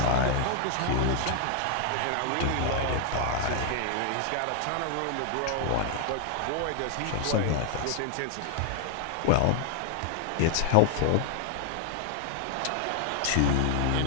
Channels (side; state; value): both; different; correlation 0.00